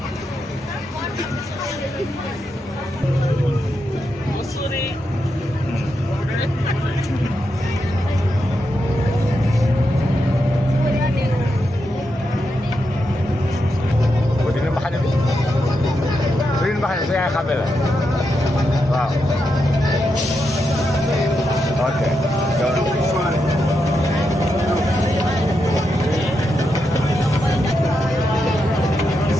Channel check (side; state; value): both; normal; correlation 0.85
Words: sa yaay xàmme la waaw ok